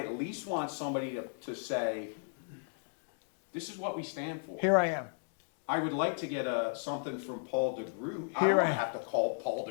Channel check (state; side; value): silent; right; digital silence